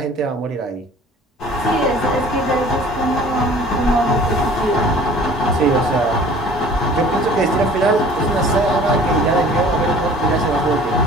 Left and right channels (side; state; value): both; normal; correlation 0.48